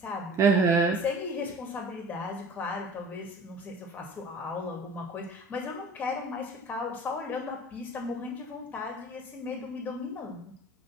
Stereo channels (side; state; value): both; normal; correlation 0.44